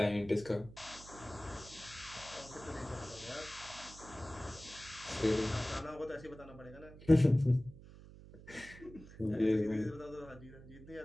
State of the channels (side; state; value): right; noise; hum, 17 dB below the sound